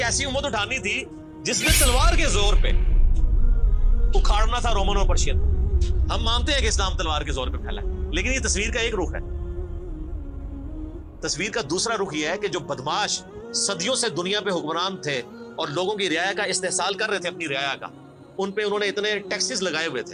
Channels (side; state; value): both; identical; correlation 1.00